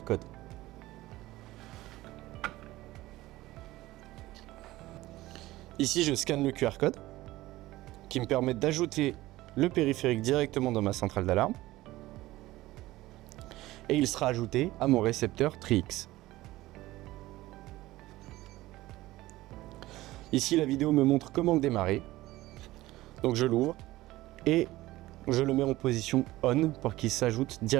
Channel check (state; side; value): quieter; left; 17.5 dB